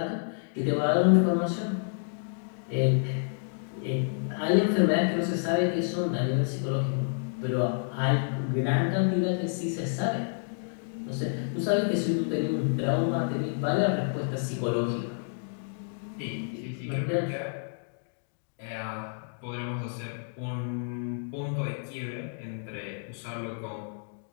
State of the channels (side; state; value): right; silent; digital silence